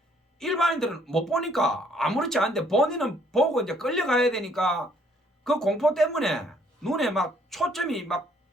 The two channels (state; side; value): normal; both; correlation 0.65